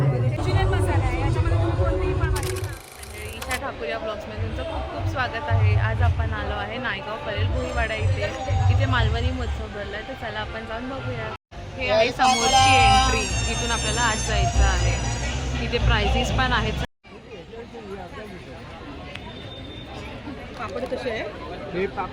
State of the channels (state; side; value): identical; both; correlation 1.00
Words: ईशा ठाकूर या ब्लॉग्समध्ये तुमचं खूप खूप स्वागत आहे. आज आपण आलो आहे नायगाव परेल भुईवाडा इथे मालवणी महोत्सव भरला आहे. तर चला आपण जाऊन बघूया. हे आहे समोरची एंट्री. इथून आपल्याला आज जायचं आहे. इथे प्राइजेस पण आहेत. पापड कसे आहे? हे